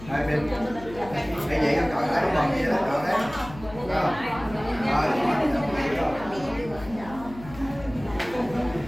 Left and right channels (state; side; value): noise; left; hum, 16 dB below the sound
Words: hai bên cái vậy nó cởi lại bằng gì đó cởi đấy